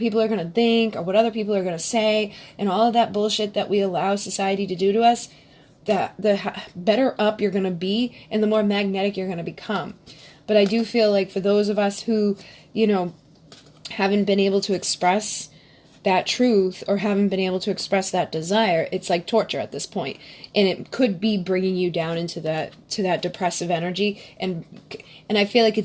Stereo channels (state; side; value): identical; both; correlation 1.00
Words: are going to think or what other people are going to say and all of that bullshit that we allow society to do to us, the better up you're going to be and the more magnetic you're going to become. But I do feel like for those of us who, haven't been able to express that truth or haven't been able to express that desire, it's like torture at this point. And it could be bringing you down into that depressive energy. And I feel like